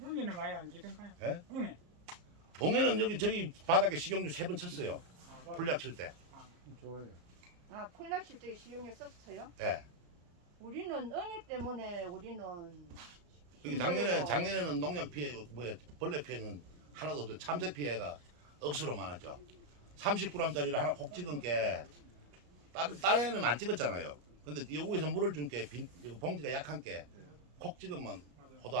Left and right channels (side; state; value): left; late; 34 ms